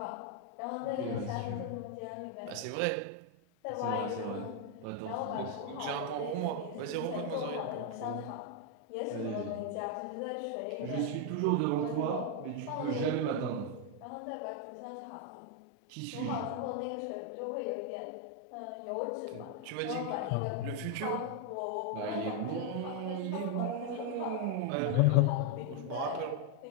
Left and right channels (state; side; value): different; both; correlation 0.01